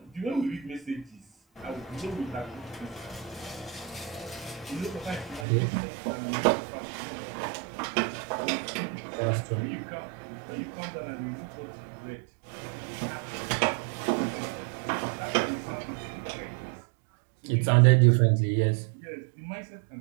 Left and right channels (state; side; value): drops out; left; at 5.5 s